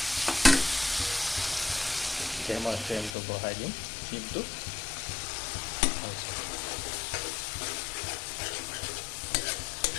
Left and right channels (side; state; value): right; drops out; at 3.2 s